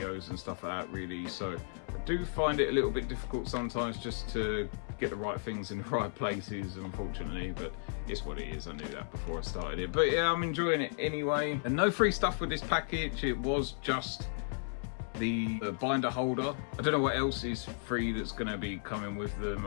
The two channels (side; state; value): right; silent; 55 dB below the other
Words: and stuff like that really, so I do find it a little bit difficult sometimes just to get the right things in the right places, unfortunately, but it's what it is. I knew that before I started it, but yeah, I'm enjoying it anyway. And no free stuff with this package, it was just the binder holder. I don't know what else is free that's going to be coming with them.